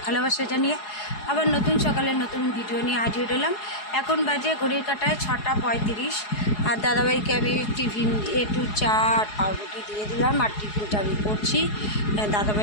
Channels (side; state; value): right; late; 4.8 ms